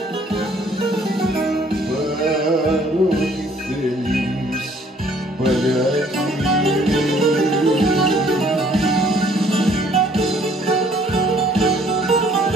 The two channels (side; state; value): both; normal; correlation 0.60